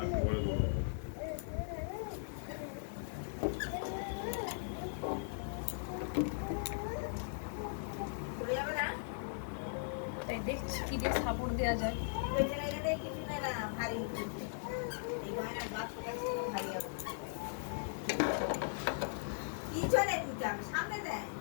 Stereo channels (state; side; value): silent; right; digital silence